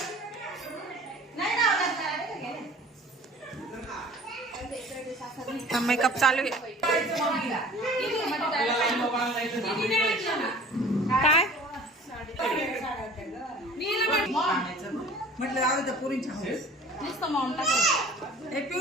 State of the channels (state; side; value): normal; both; correlation 0.46